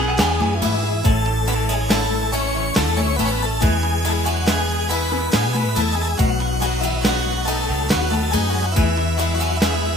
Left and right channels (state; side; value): normal; both; correlation 0.61